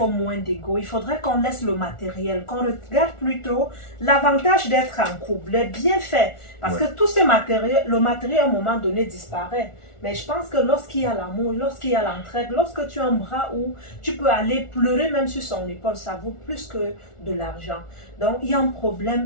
moins d'ego. Il faudrait qu'on laisse le matériel, qu'on regarde plutôt l'avantage d'être en couple, les bienfaits. Parce que tout ce matériel, le matériel à un moment donné disparaît. Mais je pense que lorsqu'il y a l'amour, lorsqu'il y a l'entraide, lorsque tu as un bras où tu peux aller pleurer même sur son épaule, ça vaut plus que de l'argent. Donc, il y a un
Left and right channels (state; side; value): late; right; 1.4 ms